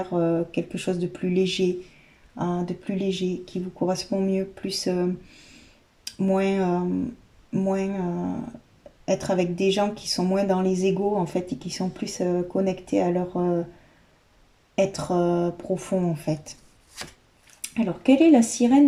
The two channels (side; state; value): both; identical; correlation 1.00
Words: quelque chose de plus léger, hein, qui vous correspond mieux, plus moins être avec des gens qui sont moins dans les égos en fait et qui sont plus connectés à leur être profond en fait. Alors, quelle est la